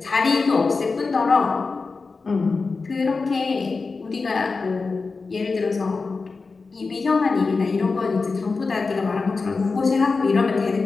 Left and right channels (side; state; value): right; quieter; 4.2 dB